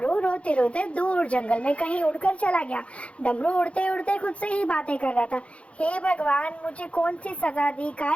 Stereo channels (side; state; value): right; late; 0.062 ms